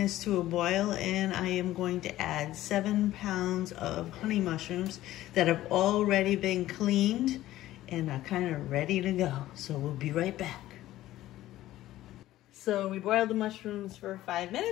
to a boil, and I am going to add 7 pounds of honey mushrooms that have already been cleaned and are kind of ready to go. So we'll be right back. So we boiled the mushrooms for 5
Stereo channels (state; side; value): quieter; right; 14.9 dB